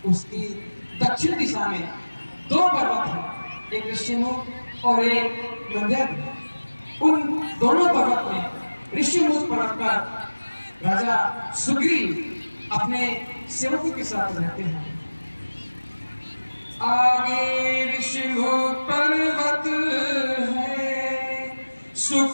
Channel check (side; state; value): both; inverted; correlation -1.00